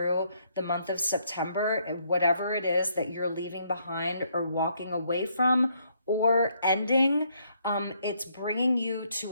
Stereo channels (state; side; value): inverted; both; correlation -0.71